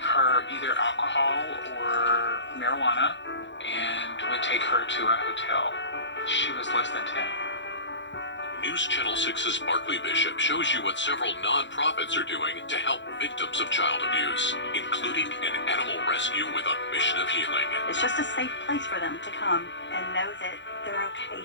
her either alcohol or marijuana and would take her to a hotel. She was less than 10. News Channel 6's Barkley Bishop shows you what several nonprofits are doing to help victims of child abuse, including an animal rescue with a mission of healing. It's just a safe place for them to come and know that they're okay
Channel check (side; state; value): right; late; 0.53 ms